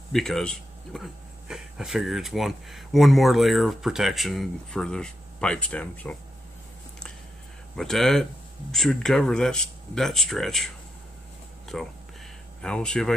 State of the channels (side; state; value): both; normal; correlation 0.84